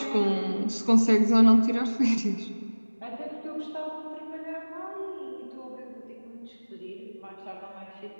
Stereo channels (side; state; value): both; inverted; correlation -1.00